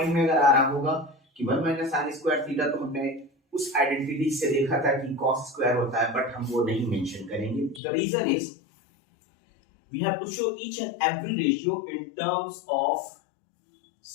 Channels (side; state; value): right; drops out; at 7.8 s